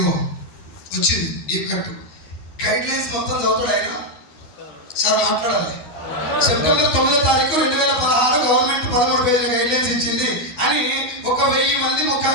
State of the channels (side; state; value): right; late; 12 ms